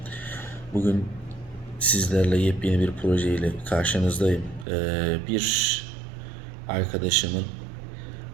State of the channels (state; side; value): drops out; left; at 4.7 s